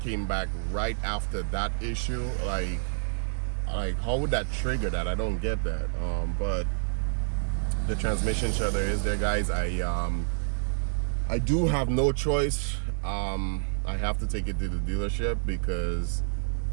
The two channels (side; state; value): left; silent; digital silence